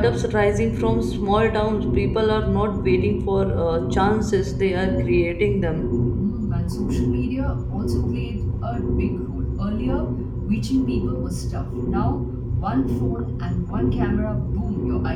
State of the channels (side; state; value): both; identical; correlation 1.00